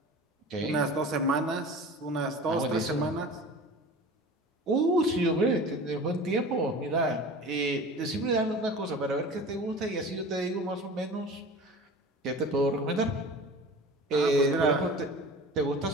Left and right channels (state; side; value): normal; both; correlation 0.38